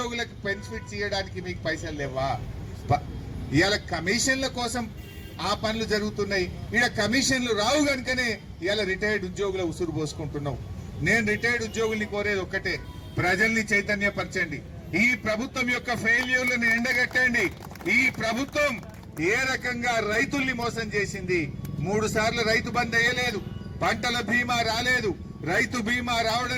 బెనిఫిట్స్ ఇవ్వడానికి మీకు పైసలు లేవా? ఇవాళ కమిషన్ల కోసం ఆ పనులు జరుగుతున్నాయి, ఇక్కడ కమిషన్లు రావు కనుకనే ఇవాళ రిటైర్డ్ ఉద్యోగుల ఉసురు పోసుకుంటున్నావు. నేను రిటైర్డ్ ఉద్యోగుల్ని కోరేది ఒక్కటే, ప్రజల్ని చైతన్యపరచండి. ఈ ప్రభుత్వం యొక్క ఫెయిల్యూర్లను ఎండగట్టండి. ఈ ప్రభుత్వం ఏ రకంగా రైతుల్ని మోసం చేసింది. 3 సార్లు రైతు బంద్ వేయలేదు, పంటల బీమా రాలేదు, రైతు బీమా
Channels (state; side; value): identical; both; correlation 1.00